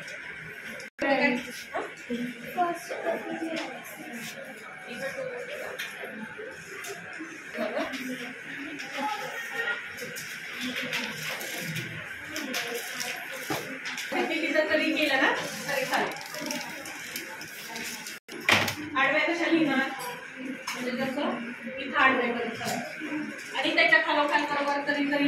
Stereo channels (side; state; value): both; identical; correlation 1.00